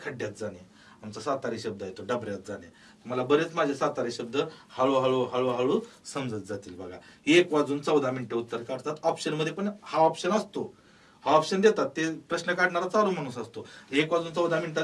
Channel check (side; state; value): both; identical; correlation 1.00